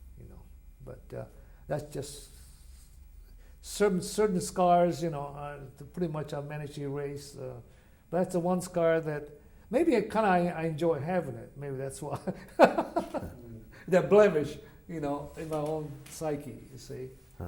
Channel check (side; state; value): both; identical; correlation 1.00